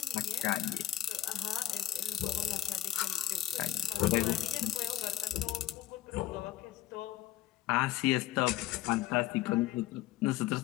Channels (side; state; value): right; quieter; 13.1 dB